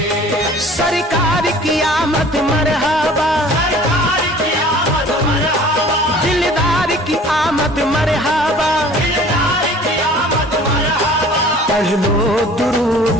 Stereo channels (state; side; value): normal; both; correlation 0.48